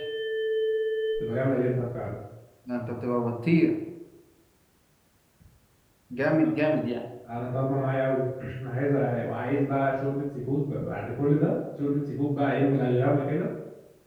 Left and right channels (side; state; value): both; identical; correlation 1.00